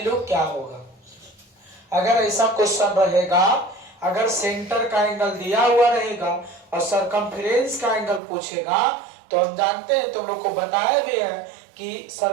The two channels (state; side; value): drops out; left; at 8.2 s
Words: क्या होगा? अगर ऐसा क्वेश्चन रहेगा, अगर सेंटर का एंगल दिया हुआ रहेगा और सरकमफेरेंस का एंगल पूछेगा, तो हम जानते हैं, तुम लोग को बताया भी है कि